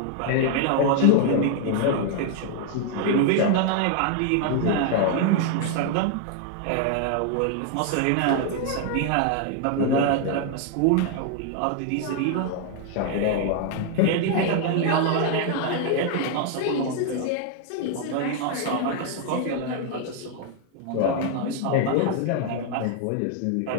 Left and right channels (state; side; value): different; both; correlation 0.00